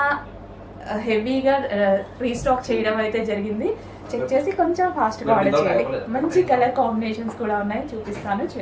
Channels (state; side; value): identical; both; correlation 1.00